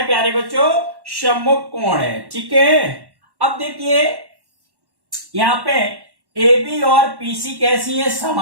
प्यारे बच्चों? सम्मुख कोण है। ठीक है, अब देखिए यहां पे ए बी और पीसी कैसी है?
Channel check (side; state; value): left; late; 1.1 ms